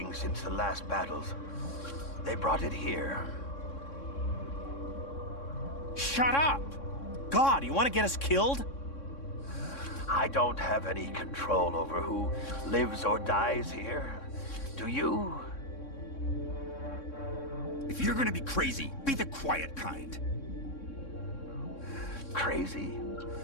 since the last battles. They brought it here. Shut up! God, you want to get us killed? I don't have any control over who lives or dies here. Do you? If you're gonna be crazy, be the quiet kind. Crazy?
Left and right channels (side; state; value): right; late; 3.6 ms